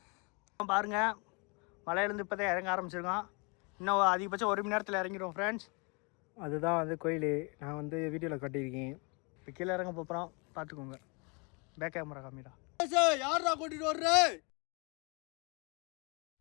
பாருங்கள், மலையிலேருந்து இப்போ தான் இறங்க ஆரம்பிச்சிருக்கோம். இன்னும் அதிகபட்சம் 1 மணி நேரத்தில் இறங்கிடுவோம் ஃப்ரெண்ட்ஸ். அதுதான் வந்து கோயில். நான் வந்து வீடியோவில் கட்டியிருக்கேன். இப்போ கீழே இறங்க போகிறோம், பார்த்துக்கோங்க. பேக் கேமரா காமிடா. யாரா கூட்டிட்டு வர்ற?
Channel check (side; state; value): right; quieter; 31.8 dB